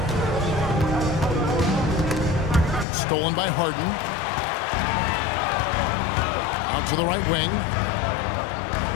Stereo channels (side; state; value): right; drops out; at 2.9 s